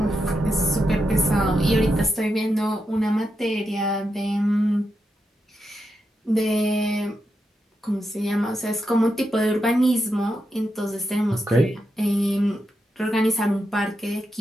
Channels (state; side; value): normal; both; correlation 0.85